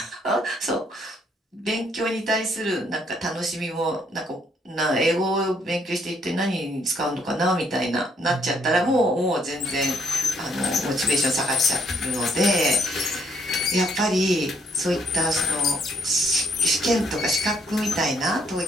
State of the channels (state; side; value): normal; both; correlation 0.69